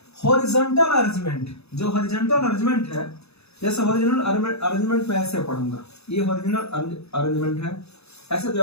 हॉरिजॉन्टल अरेंजमेंट। जो हॉरिजॉन्टल अरेंजमेंट है, जैसे हॉरिजॉन्टल अरेंजमेंट में ऐसे पढ़ूंगा, ये हॉरिजॉन्टल अरेंजमेंट है। ऐसे जब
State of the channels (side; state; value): right; late; 0.79 ms